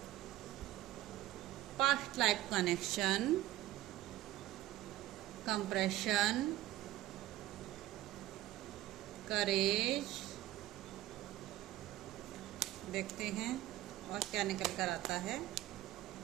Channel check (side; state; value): left; quieter; 15.2 dB